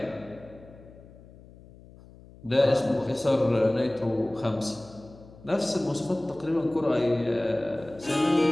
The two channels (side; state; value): left; noise; hum, 22 dB below the sound